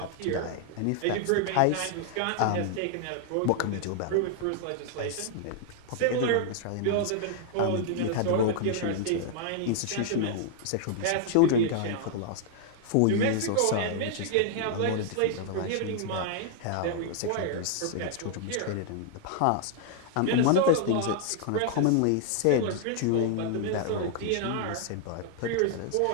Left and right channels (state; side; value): different; both; correlation 0.00